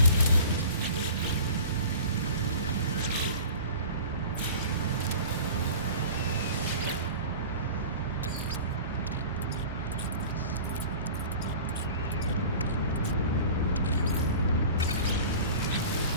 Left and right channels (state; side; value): inverted; both; correlation -0.40